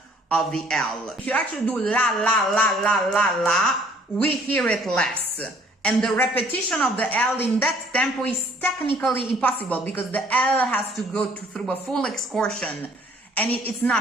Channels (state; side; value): normal; both; correlation 0.59